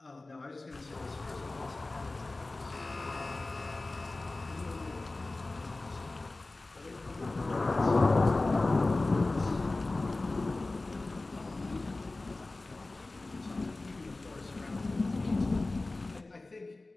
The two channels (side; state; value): right; quieter; 3.1 dB